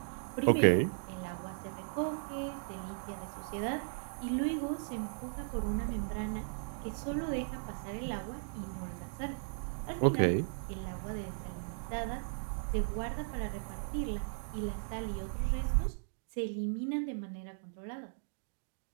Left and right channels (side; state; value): left; silent; digital silence